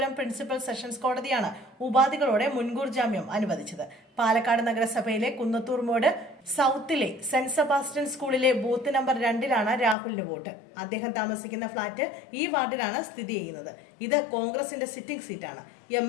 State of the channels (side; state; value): right; drops out; at 10.0 s